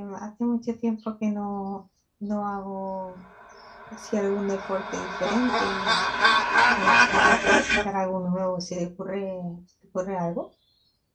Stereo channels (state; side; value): identical; both; correlation 1.00